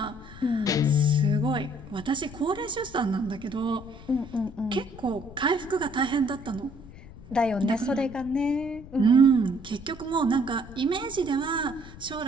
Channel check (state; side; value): noise; left; rumble, 17 dB below the sound